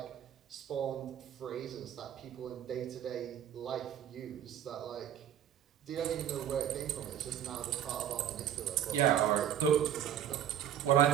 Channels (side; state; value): left; quieter; 10.2 dB